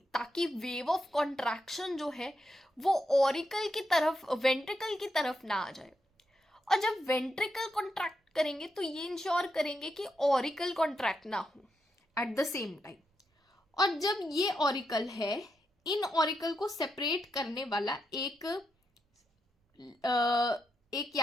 ताकि वेव ऑफ कॉन्ट्रैक्शन जो है वो ऑरिकल की तरफ, वेंट्रिकल की तरफ ना आ जाए। और जब वेंट्रिकल कॉन्ट्रैक्ट करेंगे तो ये इंश्योर करेंगे कि ऑरिकल कॉन्ट्रैक्ट ना हो एट द सेम टाइम। और जब ये ऑरिकल है, इन ऑरिकल को सेपरेट करने वाला एक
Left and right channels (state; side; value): normal; both; correlation 0.84